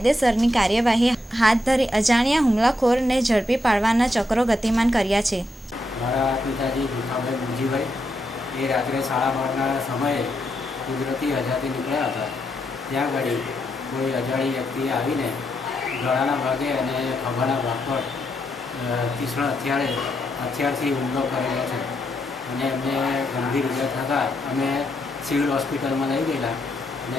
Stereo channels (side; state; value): both; normal; correlation 0.81